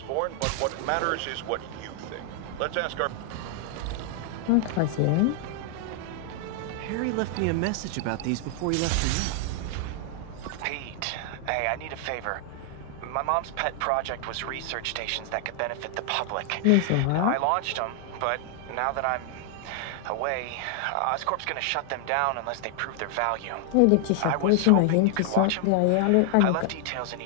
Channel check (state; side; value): different; both; correlation 0.00